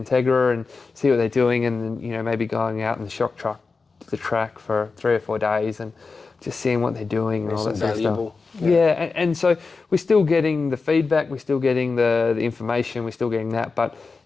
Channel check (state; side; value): quieter; right; 4.3 dB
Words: and see what they're doing, and then maybe going out in the shock truck to the track for 3 or 4 days and just seeing what they're doing and all that sort of stuff. Yeah, and so we're still getting the feedback, we're still getting the information, we're still getting that. But